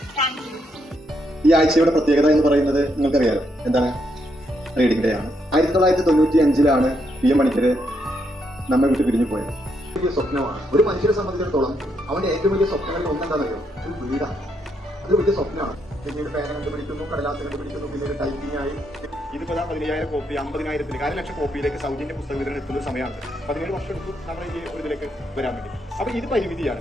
Thank you. ഈ ആഴ്ചയുടെ പ്രത്യേകത എന്ന് പറയുന്നത് നിങ്ങൾക്കറിയാലോ എന്താണ്? Reading day ആണ്. 1995 PM മണിക്കര് നമ്മെ വിട്ട് പിരിഞ്ഞു പോയത്. വലിയ സ്വപ്നമാണ് ഒരു മനുഷ്യനെ സംബന്ധിച്ചിടത്തോളം. അവന്റെ ഏറ്റവും വലിയ സ്വപ്നങ്ങളിൽ ഒന്നെന്താണെന്നറിയോ? ഒരു വീടാണ്. അത് വലിയ സ്വപ്നമാണ്. പിന്നീട് പേന കണ്ടുപിടിക്കുന്നു, കടലാസ് കണ്ടുപിടിക്കുന്നു, പിന്നീട് ടൈപ്പിംഗ് ആയി. ഇതിപ്പോ 15,000 കോപ്പി 50,000 1,00,000 കോപ്പിയിലേക്ക് സൗജന്യ പുസ്തക വിതരണം എത്തുന്ന സമയമാണ്. 17 വർഷം എടുത്തു നമ്മൾ ഈ ഒരു ഇതിലേക്ക് വരാൻ വേണ്ടി. അപ്പൊ ഇത് പരിമിതിയാണ്.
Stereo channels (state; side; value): normal; both; correlation 0.77